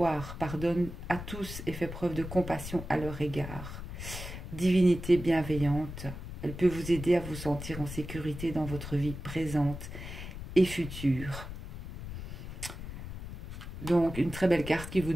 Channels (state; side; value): noise; left; rumble, 9 dB below the sound